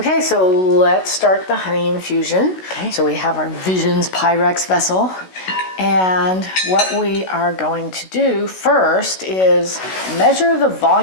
so let's start the honey infusion. Okay. So we have our Visions Pyrex vessel. And what we are going to do first is measure the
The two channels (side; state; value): right; late; 16 ms